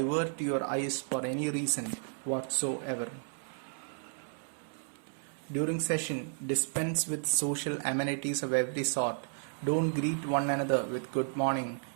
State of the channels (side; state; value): left; silent; 56 dB below the other